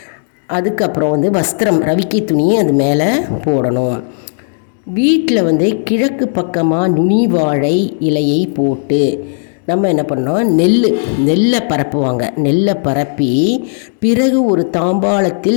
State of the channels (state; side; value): silent; right; digital silence